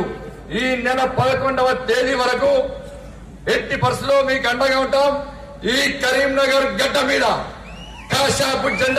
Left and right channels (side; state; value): both; identical; correlation 1.00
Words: ఈ నెల 11వ తేదీ వరకు ఎట్టి పరిస్థితుల్లో మీకు అండగా ఉంటాం. ఈ కరీంనగర్ గడ్డ మీద కాషాయపు